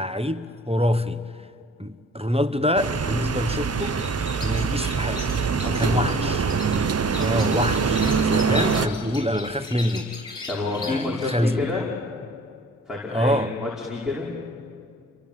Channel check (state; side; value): normal; both; correlation 0.50